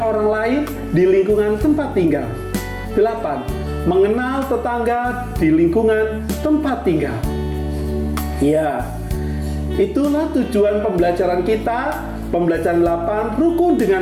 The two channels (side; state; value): both; identical; correlation 1.00